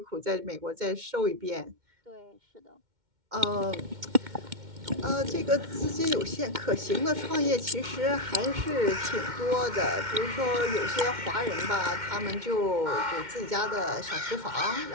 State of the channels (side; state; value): left; late; 2.1 ms